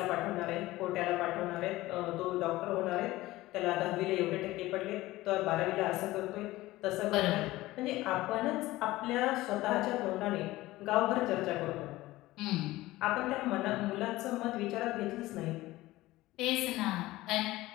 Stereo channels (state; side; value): quieter; right; 17.9 dB